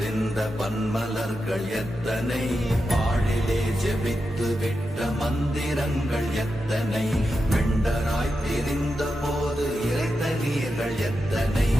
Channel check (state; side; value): normal; both; correlation 0.89